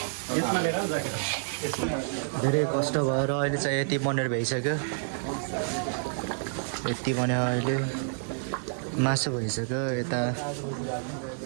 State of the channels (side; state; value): left; silent; 58 dB below the other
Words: धेरै कष्ट भएर अहिले चाहिँ यति बनेर भइसक्यो, यति बन्यो। अहिले मासु भइसक्यो,